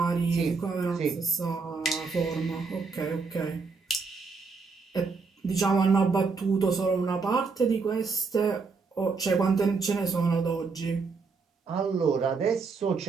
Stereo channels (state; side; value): quieter; left; 4.6 dB